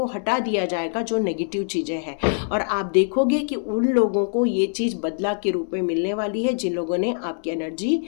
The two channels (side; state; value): right; silent; 63 dB below the other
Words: हटा दिया जाएगा जो नेगेटिव चीज़ें हैं, और आप देखोगे कि उन लोगों को ये चीज़ बदला के रूप में मिलने वाली है जिन लोगों ने आपकी एनर्जी